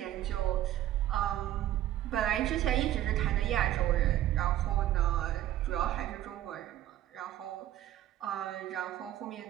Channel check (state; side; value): quieter; left; 13.0 dB